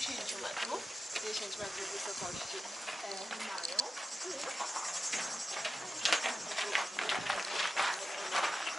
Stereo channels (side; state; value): both; normal; correlation 0.91